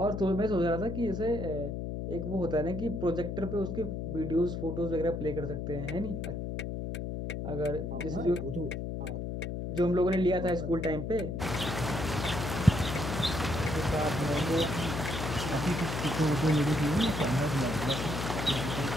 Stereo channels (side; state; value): left; noise; hum, 4 dB below the sound